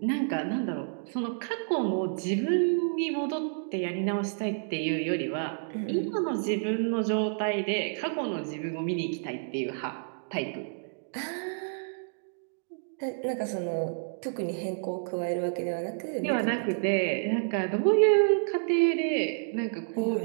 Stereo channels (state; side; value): silent; left; digital silence